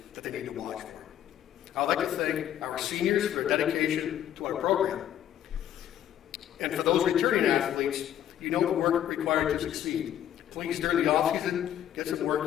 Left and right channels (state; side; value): quieter; right; 10.9 dB